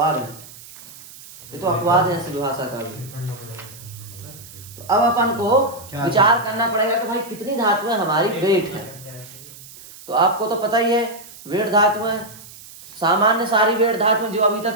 है, ये तो अपवाद है ऐसी भाषा का भी। तो अब अपन को विचार करना पड़ेगा कि भाई कितनी धातुएं हमारी वेट है। तो आपको तो पता ही है वेट धातुएं, सामान्य सारी वेट धातुएं जो अभी तक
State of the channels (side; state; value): right; noise; hiss, 18 dB below the sound